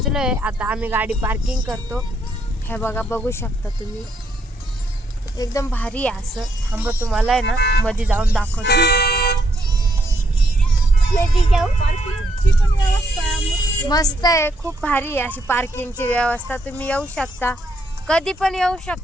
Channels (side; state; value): both; normal; correlation 0.74